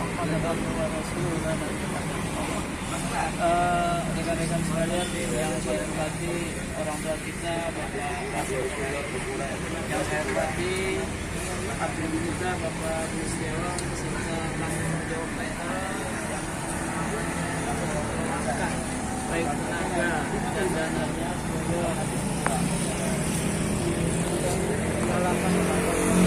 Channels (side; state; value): both; identical; correlation 1.00